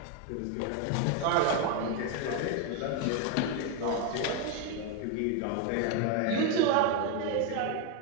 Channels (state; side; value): different; both; correlation 0.02